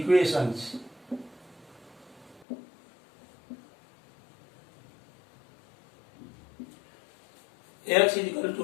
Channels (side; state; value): right; drops out; at 2.5 s